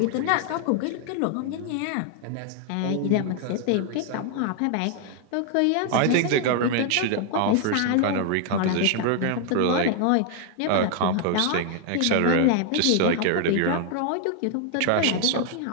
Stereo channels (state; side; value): different; both; correlation 0.00